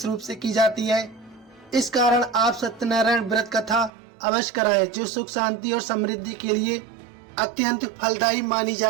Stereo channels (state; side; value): drops out; left; at 3.9 s